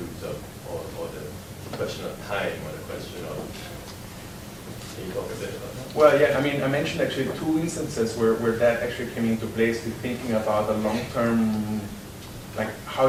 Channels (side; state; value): both; identical; correlation 1.00